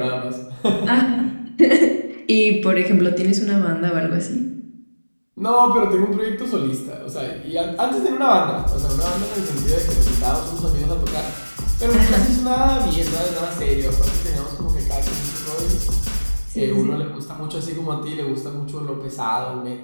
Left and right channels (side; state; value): both; inverted; correlation -1.00